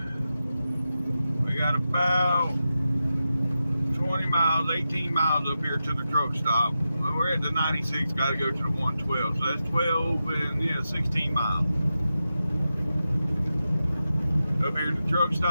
We got about 20 miles, 18 miles up here to the truck stop. We're at the 96, got to go to the 112. So that's 12 and 16 miles. Up here to the truck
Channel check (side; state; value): both; inverted; correlation -0.90